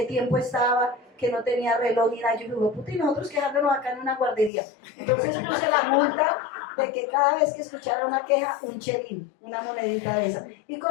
tiempo estaba, que no tenía reloj ni nada. Yo digo, puta, y nosotros quejándonos acá en una guardería. Entonces puse la multa de que cada vez que escuchara una queja, un chelín, una monedita de esa. Y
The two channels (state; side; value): drops out; right; at 4.5 s